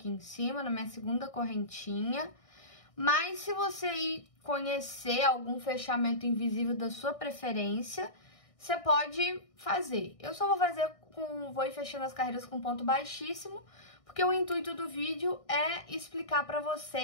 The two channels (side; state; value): right; late; 1.6 ms